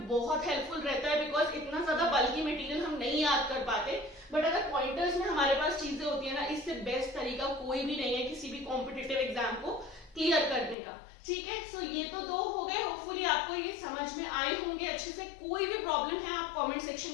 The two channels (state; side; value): drops out; right; at 10.8 s